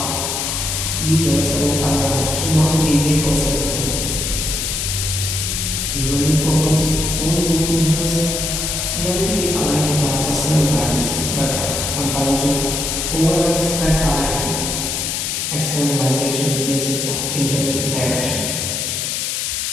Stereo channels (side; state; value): left; noise; hiss, 1 dB below the sound